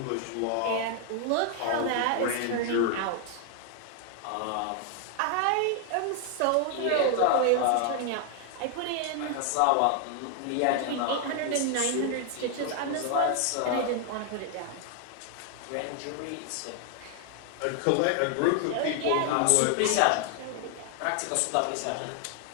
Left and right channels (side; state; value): both; different; correlation 0.00